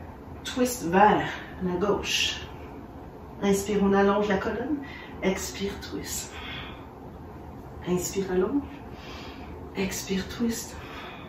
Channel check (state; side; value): identical; both; correlation 1.00